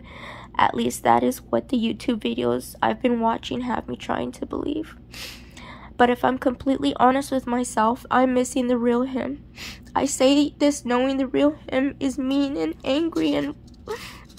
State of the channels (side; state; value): both; identical; correlation 1.00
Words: At least that is what the YouTube videos I've been watching have me trying to believe. But if I'm completely honest with myself, I'm missing the real him. I say this knowing the real him is mean and angry and